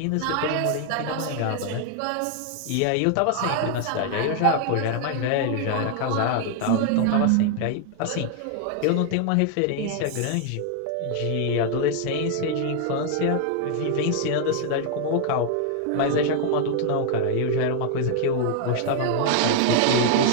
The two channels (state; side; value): different; both; correlation 0.00